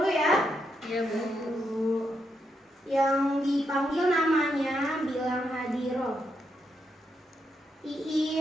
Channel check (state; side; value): normal; both; correlation 0.81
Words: ya. Iya, Bu. Yang dipanggil namanya bilang hadiroh.